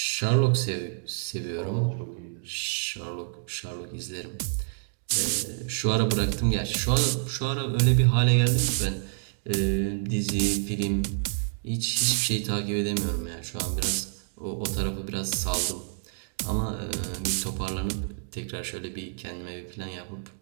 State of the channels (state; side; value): silent; left; digital silence